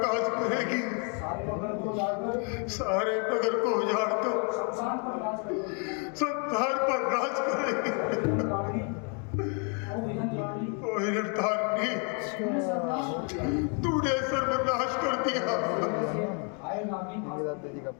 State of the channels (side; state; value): right; quieter; 38.5 dB